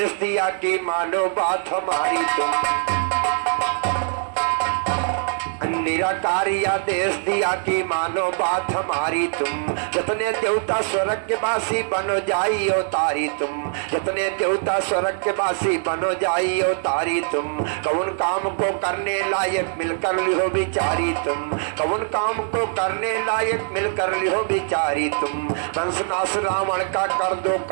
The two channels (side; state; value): left; silent; 64 dB below the other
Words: दिया कि मानो बात हमारी तुम, निराकारी आदेश दिया कि मानो बात हमारी तुम। जितने देवता स्वर्ग के वासी बनो जाई अवतारी तुम, जितने देवता स्वर्ग के वासी बनो जाई अवतारी तुम। कौन काम को करने लायक मिलकर लिहो बिचारी तुम, कौन काम को करने लायक मिलकर लिहो बिचारी तुम। पंचनाश रावण का